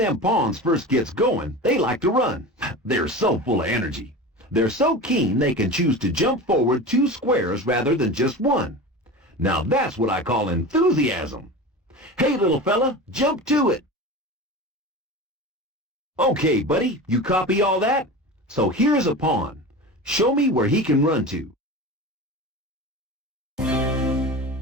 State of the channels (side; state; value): both; normal; correlation 0.30